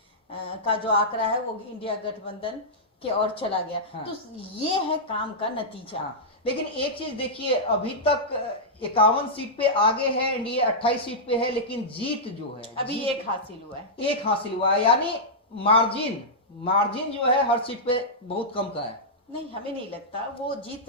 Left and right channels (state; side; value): normal; both; correlation -0.11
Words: का जो आंकड़ा है वो इंडिया गठबंधन के ओर चला गया। तो ये है काम का नतीजा। लेकिन एक चीज देखिए, अभी तक 51 सीट पे आगे है एनडीए, 28 सीट पे है, लेकिन जीत जो है अभी एक हासिल हुआ है। एक हासिल हुआ है, यानी मार्जिन जो है हर सीट पे बहुत कम का है। नहीं, हमें नहीं लगता वो जीत